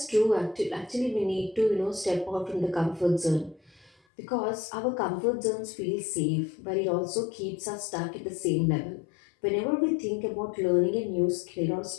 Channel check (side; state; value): right; drops out; at 3.9 s